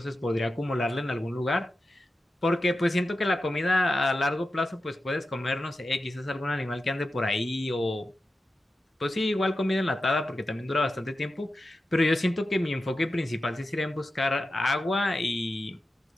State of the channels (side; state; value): both; normal; correlation 0.92